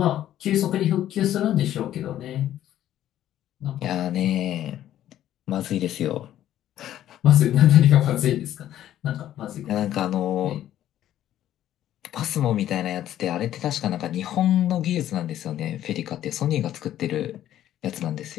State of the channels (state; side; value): quieter; right; 12.1 dB